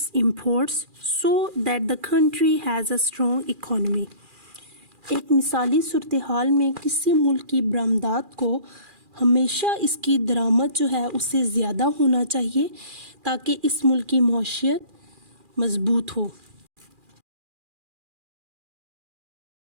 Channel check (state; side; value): late; left; 2.4 ms